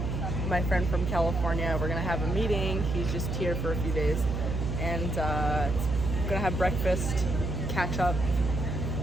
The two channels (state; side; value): noise; right; hum, 1 dB below the sound